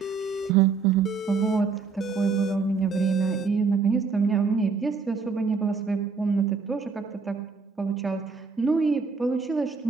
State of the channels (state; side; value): quieter; left; 5.0 dB